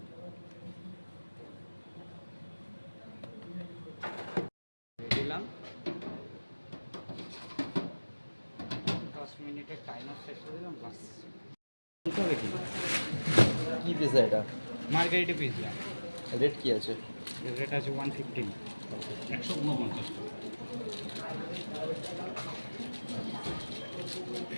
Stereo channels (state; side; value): inverted; both; correlation -1.00